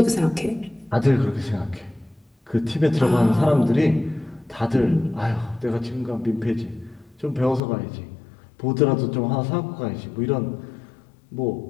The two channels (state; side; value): drops out; right; at 7.6 s